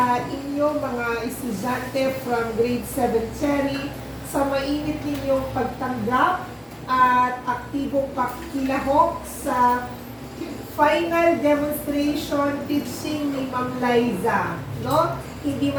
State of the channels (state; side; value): identical; both; correlation 1.00